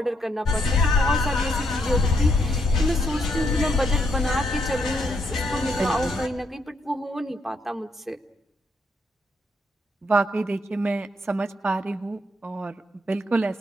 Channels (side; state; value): both; normal; correlation 0.76